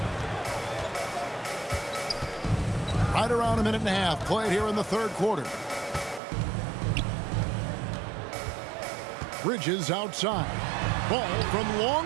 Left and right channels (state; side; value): drops out; left; at 6.2 s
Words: Right around a minute and a half played here in the third quarter. Bridges outside. Ball from long